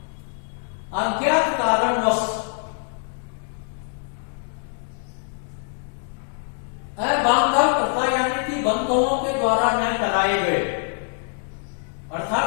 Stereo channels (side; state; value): right; silent; 63 dB below the other